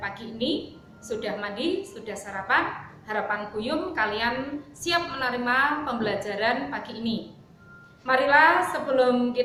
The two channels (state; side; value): identical; both; correlation 1.00